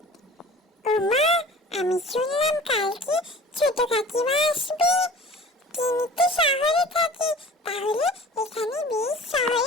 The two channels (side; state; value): both; normal; correlation 0.43